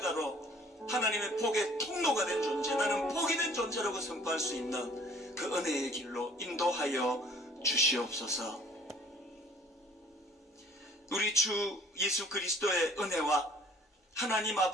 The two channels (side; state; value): both; normal; correlation 0.54